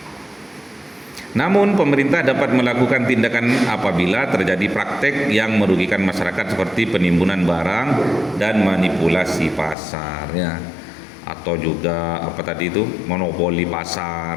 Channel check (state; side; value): drops out; right; at 9.8 s